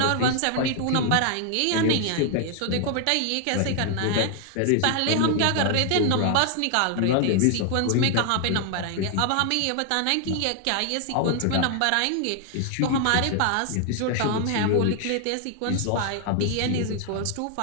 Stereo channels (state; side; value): different; both; correlation 0.00